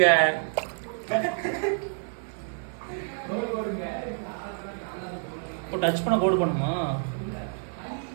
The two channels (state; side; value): silent; left; 55 dB below the other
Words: இப்போ டச் பண்ண கோடு பண்ணுமா